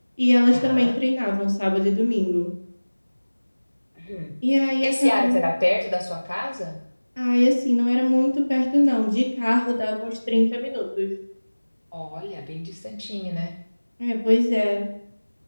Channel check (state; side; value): inverted; both; correlation -1.00